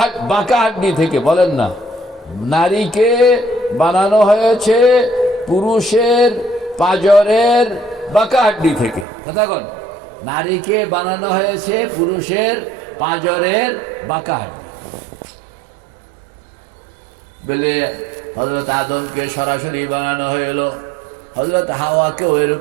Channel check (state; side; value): drops out; left; at 9.1 s